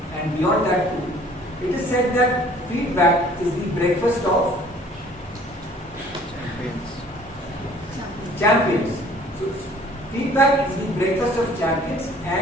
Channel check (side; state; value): both; normal; correlation 0.54